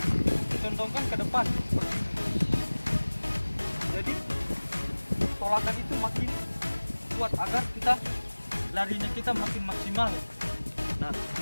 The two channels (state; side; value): inverted; both; correlation -1.00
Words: ke depan seperti ini. Jadi tolakan itu makin kuat agar larinya kita makin maksimal. Nah,